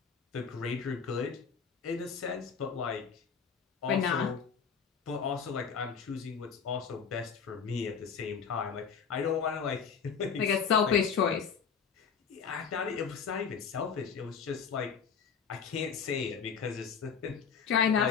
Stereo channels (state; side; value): quieter; right; 6.4 dB